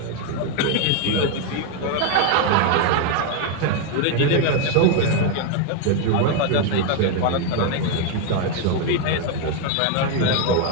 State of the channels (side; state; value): both; different; correlation 0.01